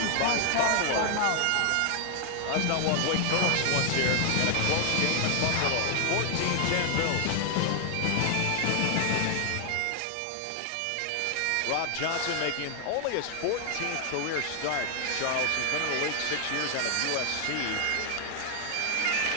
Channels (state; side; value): different; both; correlation 0.00